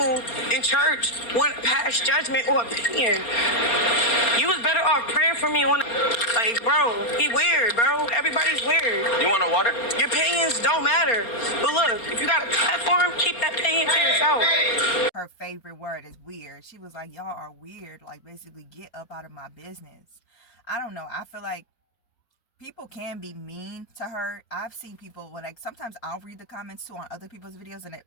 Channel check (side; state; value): right; late; 4.3 ms